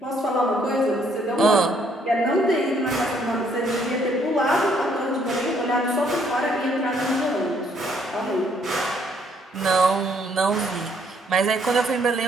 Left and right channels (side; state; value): both; normal; correlation 0.67